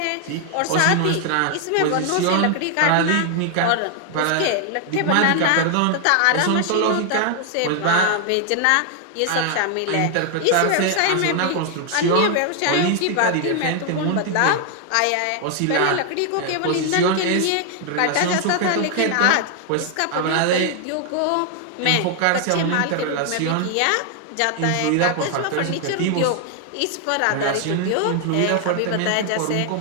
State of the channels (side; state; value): both; different; correlation 0.00